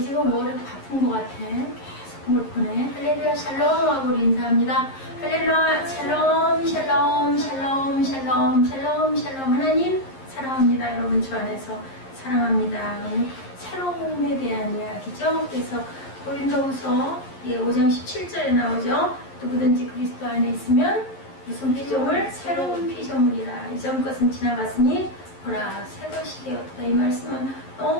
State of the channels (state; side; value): late; right; 11 ms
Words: 머리가 바쁜 것 같아. 계속 물보네. 할렐루야 샬롬 하고 우리 인사합니다. 할렐루야 샬롬 샬롬 샬롬 샬롬 샬롬 샬롬. 하나님 사랑합니다. 여러분 주 안에서 사랑합니다. 새로움에 대한 이야기죠. 그래서 고린도후서 5장 17절에 나오죠. 누구든지 그리스도 안에 있으면 무슨 피조물? 새로운 피조물이라. 이전 것은 지나갔으니 보라 새 것이 되었다. 이 말씀은